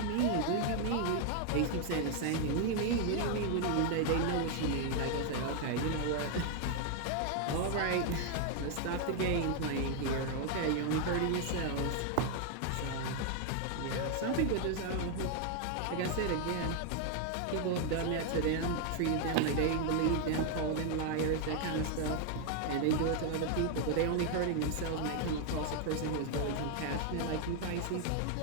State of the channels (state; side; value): different; both; correlation 0.00